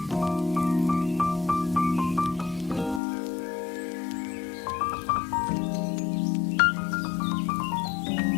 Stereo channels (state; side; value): drops out; right; at 3.0 s